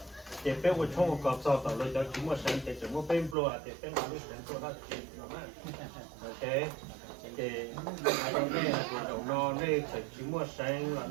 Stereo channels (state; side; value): drops out; left; at 3.4 s